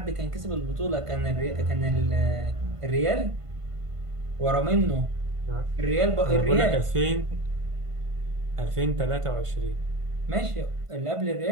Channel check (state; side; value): late; left; 1.5 ms